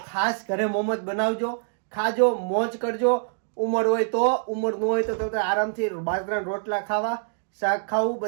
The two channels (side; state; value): left; silent; digital silence